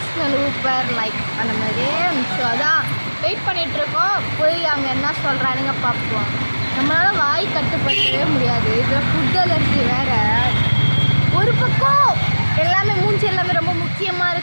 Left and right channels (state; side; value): inverted; both; correlation -1.00